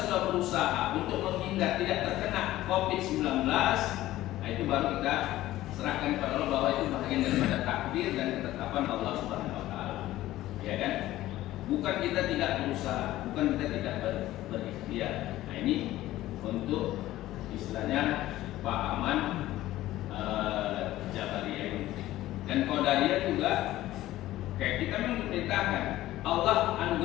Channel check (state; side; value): quieter; right; 15.4 dB